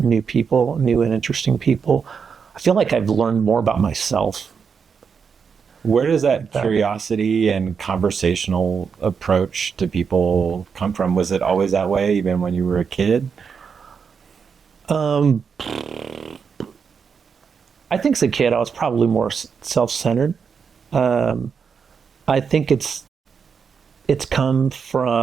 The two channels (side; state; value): left; quieter; 6.2 dB